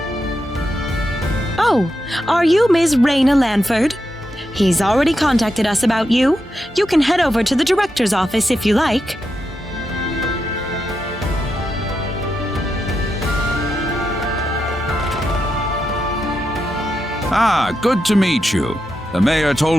Oh, are you Ms. Rena Lanford? He's already contacted us about you. You can head over to the director's office if you like. Ah, good to meet you. The mayor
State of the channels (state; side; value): normal; both; correlation 0.86